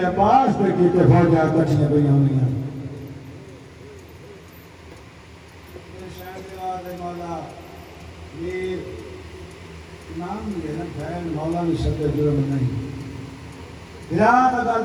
عباس پہ کیتے فوجا کٹھیاں پہیاں ہونیاں میری شہر دی آواز رہی مولا یہ نام یہ نا بہن مولا نے سکے جرم نہیں گران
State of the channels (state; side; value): identical; both; correlation 1.00